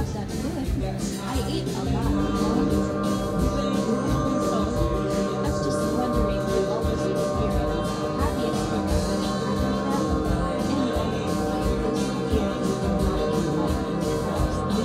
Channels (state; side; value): identical; both; correlation 1.00